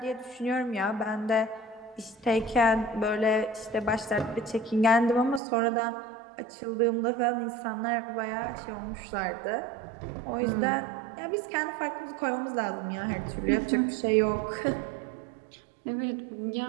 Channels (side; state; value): left; drops out; at 5.4 s